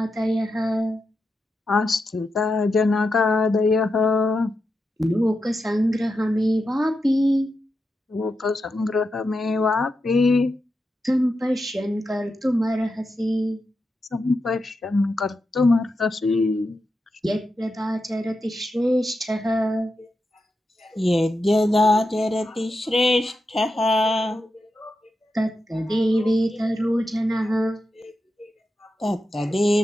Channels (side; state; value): both; normal; correlation 0.88